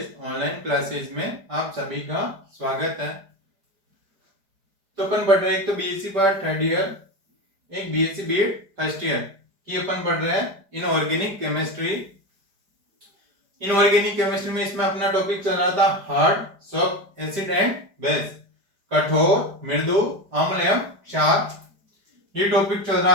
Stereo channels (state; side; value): late; left; 4.9 ms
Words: online classes में आप सभी का स्वागत है। तो अपन पढ़ रहे हैं, एक तो बीएससी पार्ट थर्ड ईयर, एक बीएससी बीएड फर्स्ट ईयर की अपन पढ़ रहे हैं इनऑर्गेनिक केमिस्ट्री। इनऑर्गेनिक केमिस्ट्री में इसमें अपना टॉपिक चल रहा था hard, soft, acid and base, कठोर, मृदु, अम्ल एवं क्षार। ये टॉपिक चल रहा